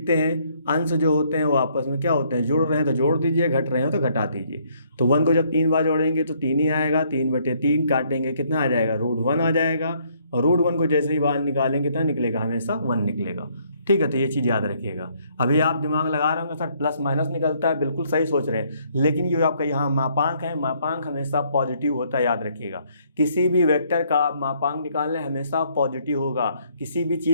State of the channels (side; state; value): both; inverted; correlation -0.67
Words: हैं, अंश जो होते हैं वो आपस में क्या होते हैं, जुड़ रहे हैं तो जोड़ दीजिए, घट रहे हैं तो घटा दीजिए। तो 1 को जब 3 बार जोड़ेंगे तो 3 ही आएगा, 3/3 काटेंगे कितना आ जाएगा, √1 आ जाएगा। और √1 को जैसे ही बाहर निकालेंगे कितना निकलेगा, हमेशा 1 निकलेगा। ठीक है, तो ये चीज़ याद रखिएगा। अभी आप दिमाग लगा रहे होंगे सर प्लस माइनस निकलता है, बिल्कुल सही सोच रहे हैं, लेकिन ये आपका यहाँ मापांक है, मापांक हमेशा पॉजिटिव होता है, याद रखिएगा। किसी भी वेक्टर का आप मापांक निकाल लें हमेशा पॉजिटिव होगा, किसी भी